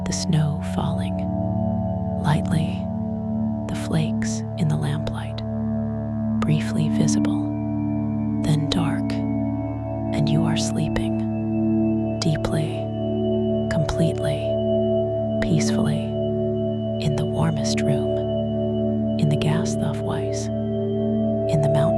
The snow falling. Lightly, the flakes in the lamplight. Briefly visible, then dark, and you are sleeping. Deeply, completely, peacefully, in the warmest room, in the Gasthof-Weiss, in the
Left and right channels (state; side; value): identical; both; correlation 1.00